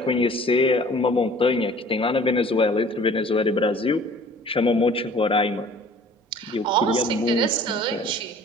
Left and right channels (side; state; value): both; normal; correlation 0.50